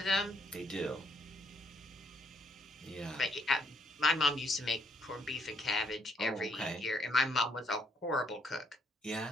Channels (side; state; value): both; normal; correlation 0.71